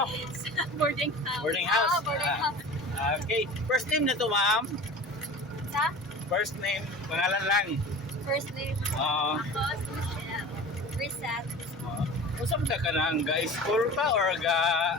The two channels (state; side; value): normal; both; correlation 0.37